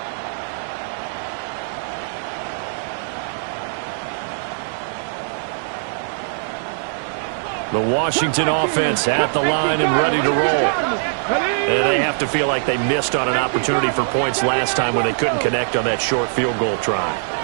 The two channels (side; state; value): left; silent; 60 dB below the other